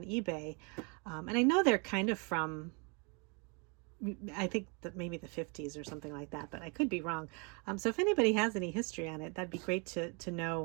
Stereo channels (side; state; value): left; quieter; 33.7 dB